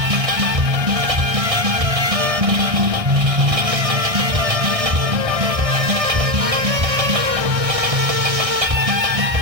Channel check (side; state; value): left; late; 1.3 ms